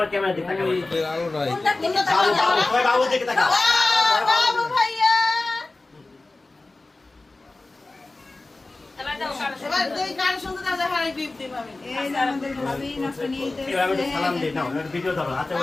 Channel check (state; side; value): quieter; right; 3.2 dB